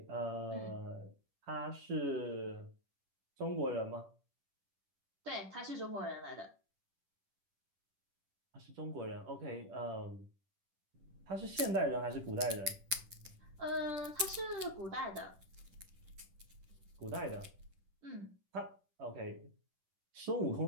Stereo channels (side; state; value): left; late; 10 ms